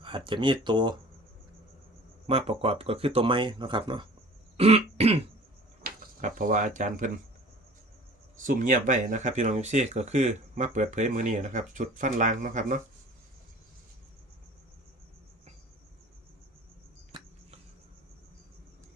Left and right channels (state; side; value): normal; both; correlation 0.45